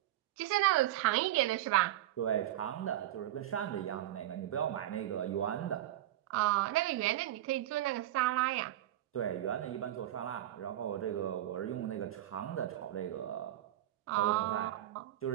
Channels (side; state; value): left; quieter; 13.5 dB